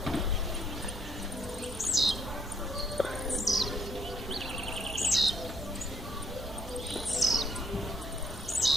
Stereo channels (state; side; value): normal; both; correlation 0.69